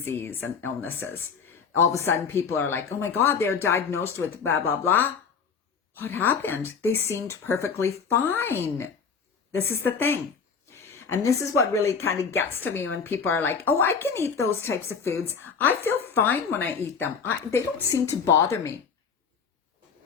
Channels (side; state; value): right; quieter; 6.0 dB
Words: and illnesses. All of a sudden people are like, oh my God, they're diagnosed with blah, blah, blah. What happened? They seemed perfectly fine. This is the thing. And this is what really kind of gets to me when people are like, oh, I can eat those types of foods. I feel fine when I eat them. They don't seem to bother me.